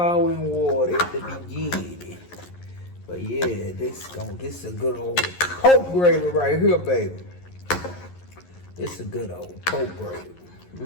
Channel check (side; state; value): right; late; 11 ms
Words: and water at the beginning. But yeah, this is a good old pork gravy right here, baby. This is a good old pork gravy.